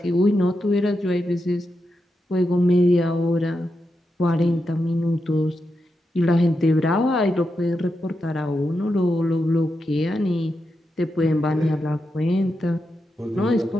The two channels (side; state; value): both; normal; correlation 0.87